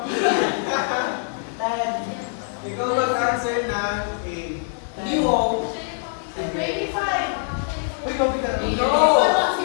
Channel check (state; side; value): silent; right; digital silence